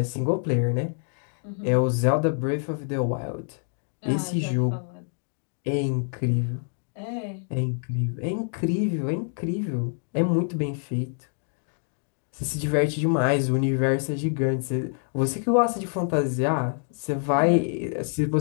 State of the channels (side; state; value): right; silent; 61 dB below the other